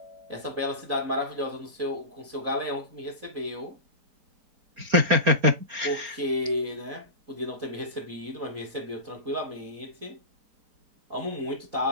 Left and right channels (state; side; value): late; left; 4.3 ms